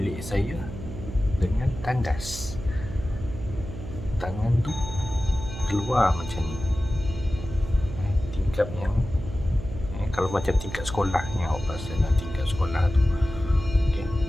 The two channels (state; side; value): noise; right; hum, 10 dB below the sound